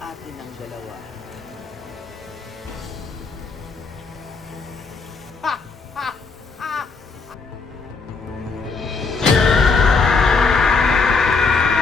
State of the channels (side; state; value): right; quieter; 4.6 dB